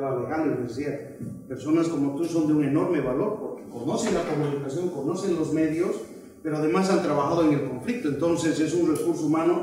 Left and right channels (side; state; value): both; identical; correlation 1.00